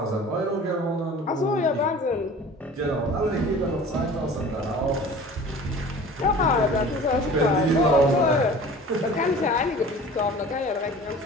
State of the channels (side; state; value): both; normal; correlation 0.43